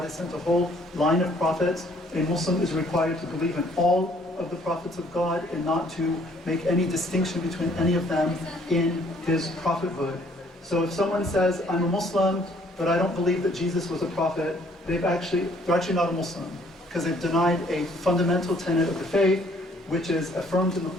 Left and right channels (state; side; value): normal; both; correlation 0.62